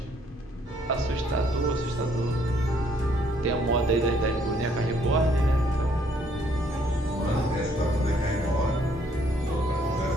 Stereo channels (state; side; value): normal; both; correlation 0.66